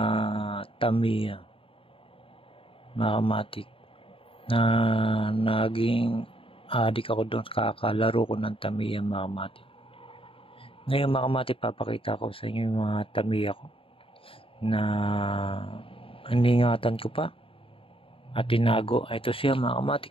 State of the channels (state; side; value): late; right; 0.26 ms